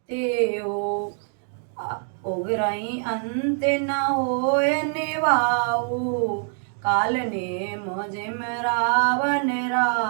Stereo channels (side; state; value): left; silent; 57 dB below the other